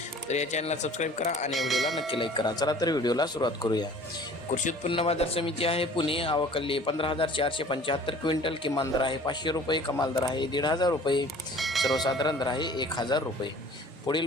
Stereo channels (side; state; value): both; normal; correlation 0.48